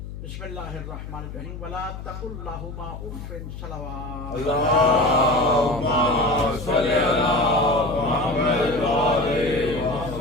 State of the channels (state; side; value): noise; left; hum, 10 dB below the sound